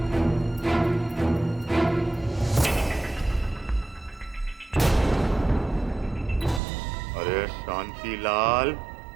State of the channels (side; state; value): left; drops out; at 6.6 s